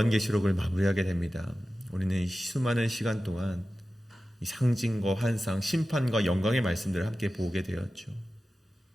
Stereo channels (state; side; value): normal; both; correlation 0.94